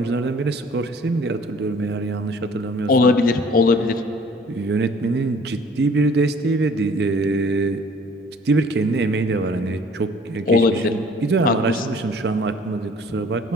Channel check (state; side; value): normal; both; correlation 0.54